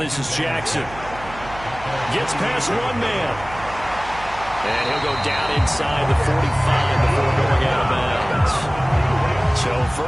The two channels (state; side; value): noise; right; hum, 16 dB below the sound